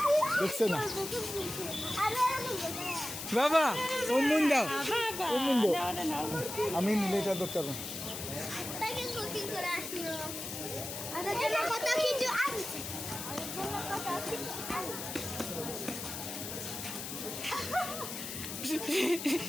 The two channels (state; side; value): noise; left; hiss, 7 dB below the sound